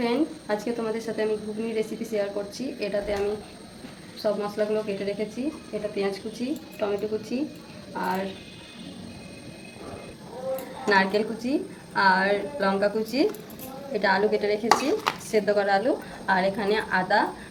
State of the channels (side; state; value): both; identical; correlation 1.00